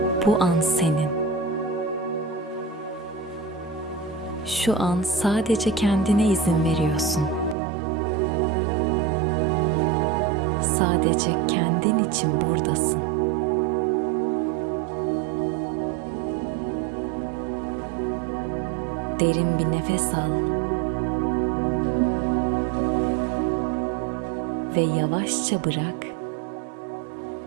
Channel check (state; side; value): drops out; left; at 7.6 s